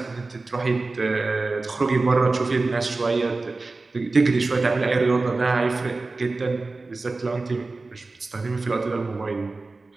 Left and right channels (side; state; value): left; quieter; 3.5 dB